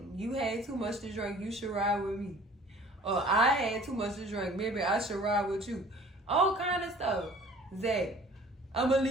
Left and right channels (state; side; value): normal; both; correlation 0.50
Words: You had too much to drink, you should ride with me. Or I had too much to drink, maybe I should ride with you. All kind of stuff. Zach, I'm going to